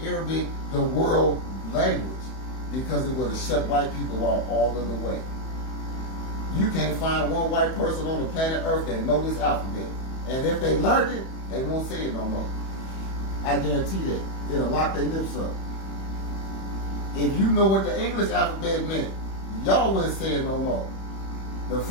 Arabic the world language, because it would have shut white people out all of the way. You can't find one white person on the planet Earth that know this alphabet. And if they learned it, they won't say it no more. I guarantee that. It'll lock their lips up. If you know what the English alphabet meant, y'all wouldn't say it no more. The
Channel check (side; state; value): right; late; 31 ms